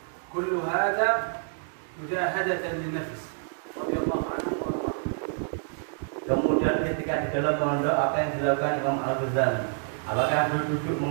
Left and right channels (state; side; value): silent; left; 60 dB below the other